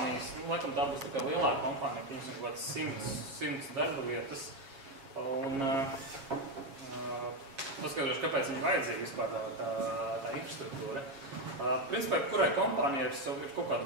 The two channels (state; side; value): late; left; 7.3 ms